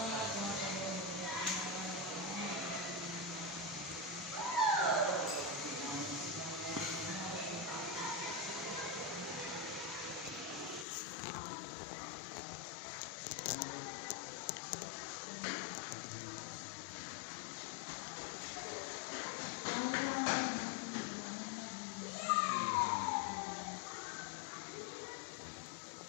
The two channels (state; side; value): drops out; right; at 10.9 s